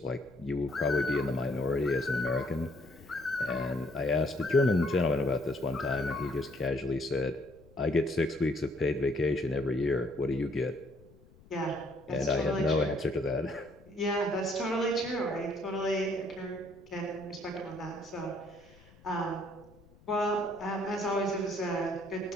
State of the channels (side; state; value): left; noise; rumble, 25 dB below the sound